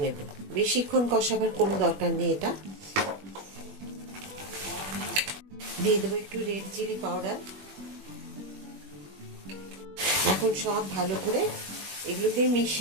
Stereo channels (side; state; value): left; late; 21 ms